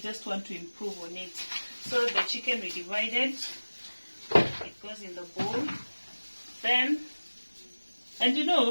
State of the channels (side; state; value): both; inverted; correlation -1.00